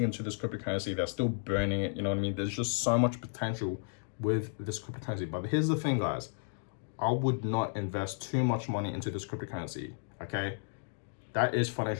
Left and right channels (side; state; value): right; silent; digital silence